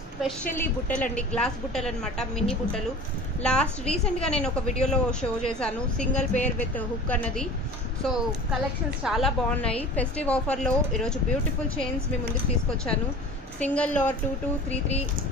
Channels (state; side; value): normal; both; correlation 0.39